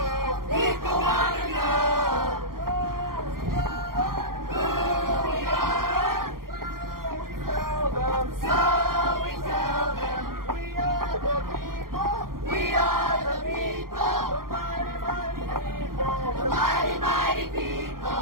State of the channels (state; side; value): late; left; 0.92 ms